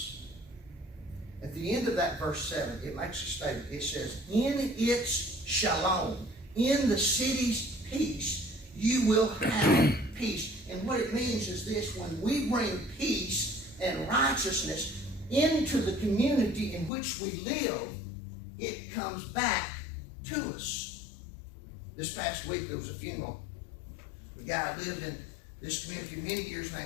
At the end of that verse 7, it makes a statement. It says, in its shalom, in the city's peace, you will have peace. And what it means is this: when we bring peace and righteousness into the community in which we live, it comes back to us. This past week, there was a funeral. The guy lived in this community many years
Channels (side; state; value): right; drops out; at 16.9 s